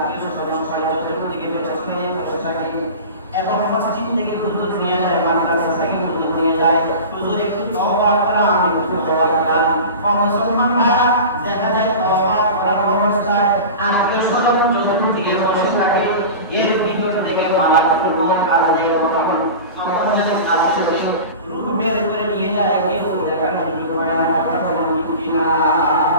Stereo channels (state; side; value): inverted; both; correlation -0.33